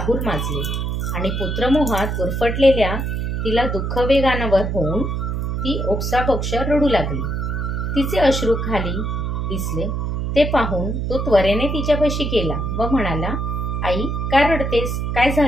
माजले आणि पुत्रमोहात गुरफटलेल्या तिला दुःख वेगानावर होऊन ती ओक्साबोक्ष रडू लागली। तिचे अश्रू खाली दिसले ते पाहून तो त्वरेने तिच्यापाशी गेला व म्हणाला, आई, का रडतेस? काय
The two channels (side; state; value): right; noise; hum, 1 dB below the sound